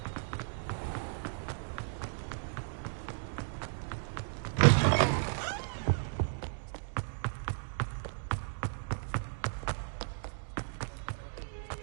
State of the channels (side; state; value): left; silent; digital silence